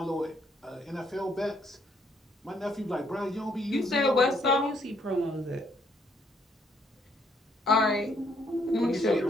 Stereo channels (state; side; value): normal; both; correlation 0.70